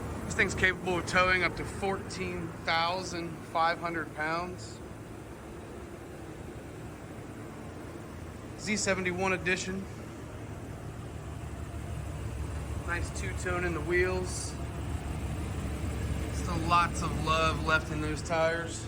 This thing's capable of towing up to 14,500 pounds. Z71 edition. Nice two-tone in the wheels. Still lots of love left in those tires.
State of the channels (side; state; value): both; identical; correlation 1.00